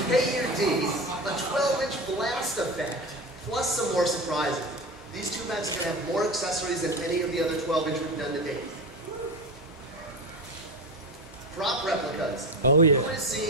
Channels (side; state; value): both; normal; correlation 0.24